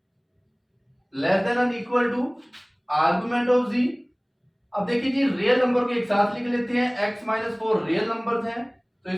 less than and equal to argument of z। अब देखिए जी रियल नंबर को एक साथ लिख लेते हैं, x - 4 रियल नंबर्स हैं, तो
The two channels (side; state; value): both; identical; correlation 1.00